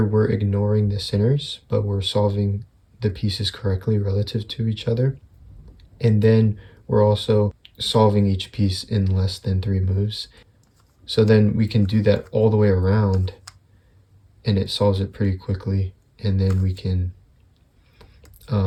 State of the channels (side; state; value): both; identical; correlation 1.00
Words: we're ignoring the centers, but we're solving the pieces correctly relative to each other. And then we're also solving each piece in less than 3 moves. So then we can do that all the way around, and it solves it pretty quickly. And then we can